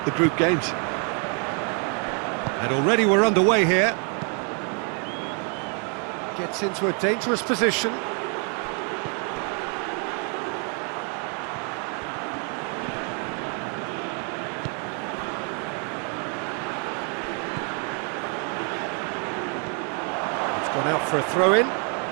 group games. And already we're underway here. Gets into a dangerous position. Gone out for a throw-in.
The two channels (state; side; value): quieter; left; 38.8 dB